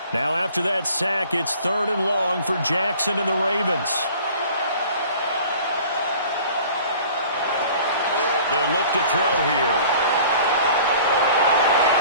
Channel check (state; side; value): inverted; both; correlation -0.48